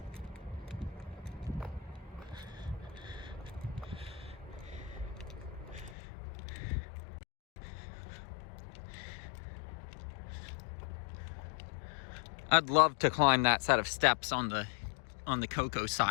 I'd love to climb that set of steps on the cocoa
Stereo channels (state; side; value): drops out; right; at 6.0 s